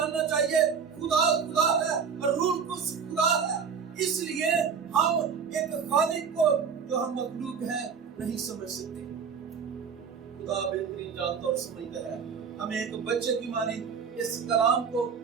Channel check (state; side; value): quieter; left; 6.4 dB